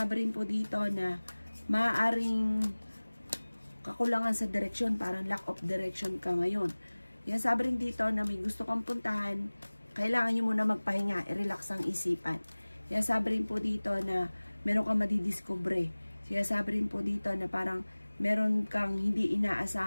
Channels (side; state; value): both; inverted; correlation -1.00